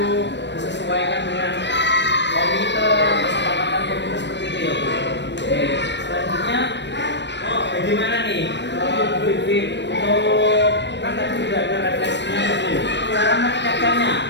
disesuaikan dengan komite, kesepakatan komite seperti itu ya Bu. Oke, selanjutnya bagaimana nih Bu Vivit untuk kan tadi sudah ada refleksinya Bu. Cara meningkatkannya,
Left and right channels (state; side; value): late; right; 0.51 ms